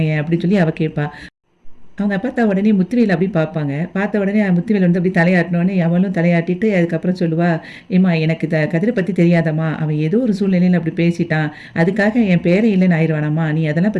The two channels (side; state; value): both; identical; correlation 1.00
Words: அப்படின்னு சொல்லி அவ கேட்பா. அவங்க அப்பத்தா உடனே முத்துவேல் அப்படி பார்ப்பாங்க. பார்த்த உடனே முத்துவேல் வந்து அப்படி தலையாட்டினோனே, அவளும் தலையாட்டிட்டு அதுக்கப்புறம் சொல்லுவா, "ஏம்மா எனக்கு கதிர பத்தி தெரியாதாம்மா? அவன் ஏதோ ஒரு சூழ்நிலையில அப்படி பேசிட்டான். அதுக்காக என் பேரே இல்லன்னு ஆயிருவானாம்மா? நீ அதெல்லாம்